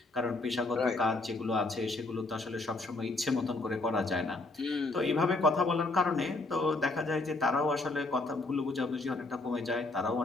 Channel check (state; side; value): quieter; right; 3.1 dB